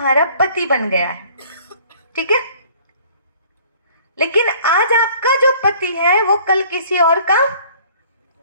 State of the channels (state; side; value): inverted; both; correlation -0.54